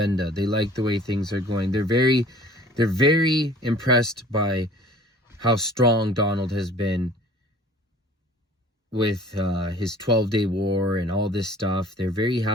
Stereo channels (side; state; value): both; normal; correlation 0.49